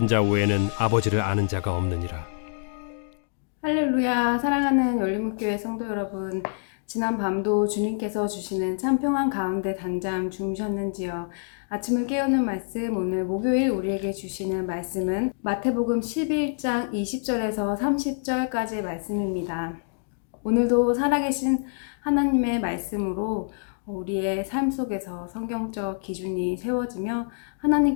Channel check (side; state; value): right; silent; digital silence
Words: 자 외에는 아버지를 아는 자가 없느니라. 할렐루야. 사랑하는 열린문교회 성도 여러분, 지난 밤도 주님께서 주시는 참 평안 가운데 단잠 주무셨는지요? 아침을 깨우는 말씀, 오늘 목요일 우리에게 주시는 말씀은 마태복음 11장 20절에서 30절까지의 말씀입니다. 오늘도 살아계신 하나님의 말씀으로 우리의 삶 속에서 성경적 기준이 세워지며